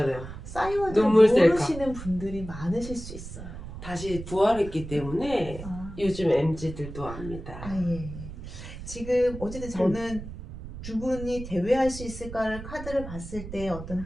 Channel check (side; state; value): right; noise; rumble, 11 dB below the sound